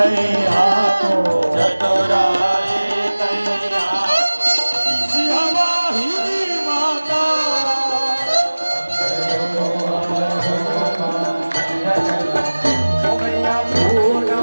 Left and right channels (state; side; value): inverted; both; correlation -1.00